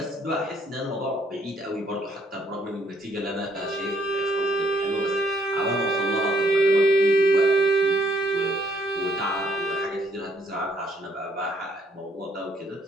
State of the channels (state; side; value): normal; both; correlation 0.68